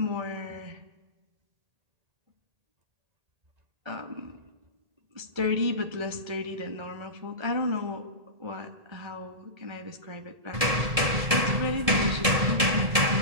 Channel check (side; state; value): left; late; 1.7 ms